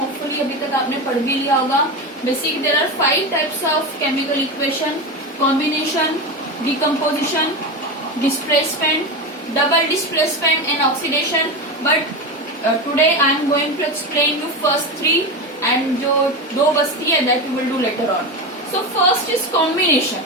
अभी तक आपने पढ़ भी लिया होगा. Basically there are 5 types of chemical equation: combination, decomposition, displacement, double displacement and oxidation. But today I am going to explain you first 3 and जो 2 बचती है that we will do later on. So first is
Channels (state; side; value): normal; both; correlation 0.19